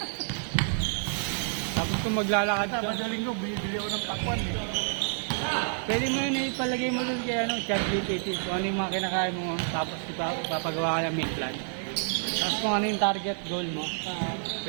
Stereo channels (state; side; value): silent; left; digital silence